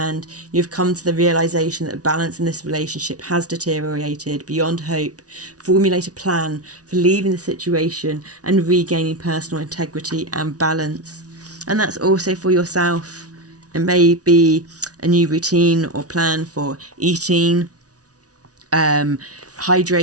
you have come to the realization that balance in this relationship has deteriorated beyond hope, formulate a plan for leaving the situation and regaining personal integrity and balance. And that's also for yourself. It may be a new routine or plan for eating,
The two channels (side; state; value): left; late; 0.68 ms